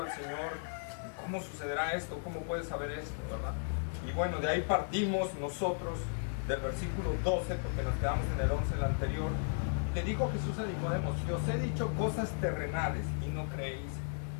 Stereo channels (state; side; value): silent; right; digital silence